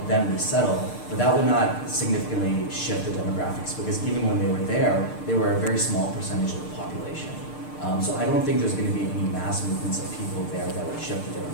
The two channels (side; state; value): right; late; 6.6 ms